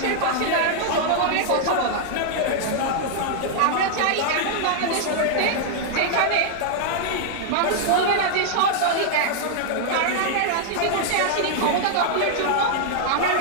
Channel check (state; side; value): different; both; correlation -0.01